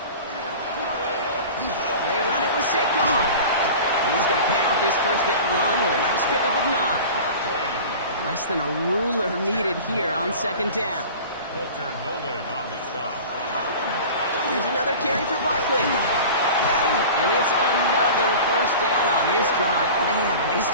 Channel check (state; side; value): inverted; both; correlation -0.37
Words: They run it with Saquon. And he's going to pay off his first down run with a nice pickup of 9. Less than a ruler needed here on 2nd down. Walter Nolan on the stop. Here's another carry for Barkley. And it's another first down on this drive. Man, this